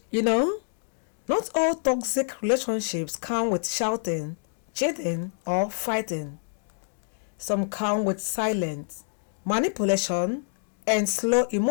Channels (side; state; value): right; silent; digital silence